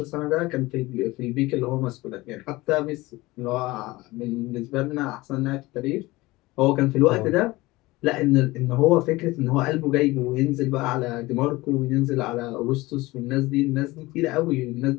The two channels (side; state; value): right; quieter; 20.4 dB